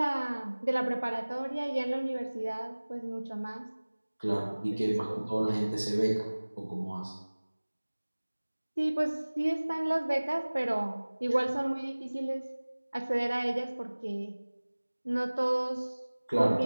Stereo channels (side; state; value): both; inverted; correlation -1.00